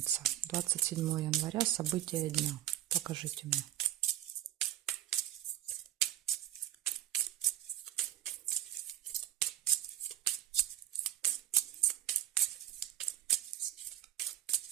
27 января, события дня. Покажите мне.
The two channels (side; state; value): left; quieter; 13.2 dB